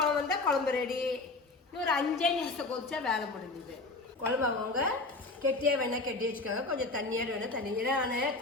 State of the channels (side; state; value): right; quieter; 3.3 dB